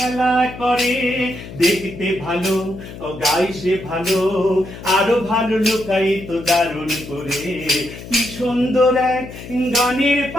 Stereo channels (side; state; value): left; noise; hum, 13 dB below the sound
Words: করে। দেখতে ভালো ও গায়ে সে ভালো, আরো ভালো লুকাই তো দারুণ করে। কি সুন্দর এক গানের